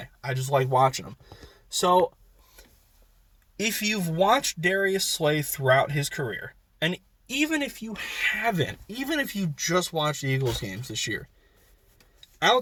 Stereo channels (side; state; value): both; identical; correlation 1.00